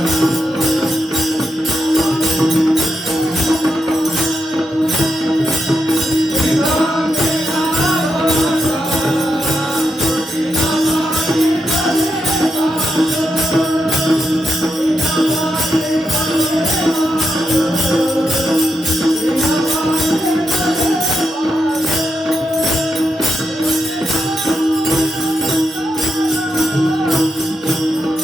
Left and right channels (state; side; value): normal; both; correlation 0.85